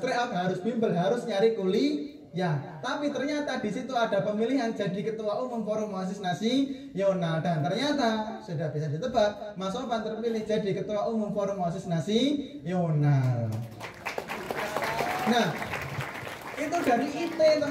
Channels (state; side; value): identical; both; correlation 1.00